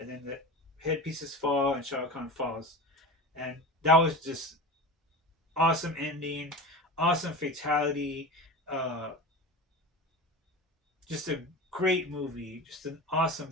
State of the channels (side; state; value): both; normal; correlation 0.30